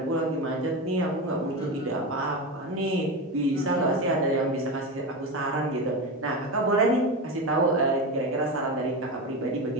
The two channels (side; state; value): both; normal; correlation 0.20